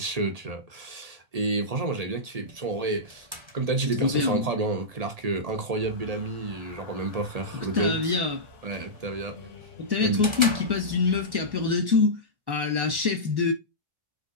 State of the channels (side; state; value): left; late; 1.3 ms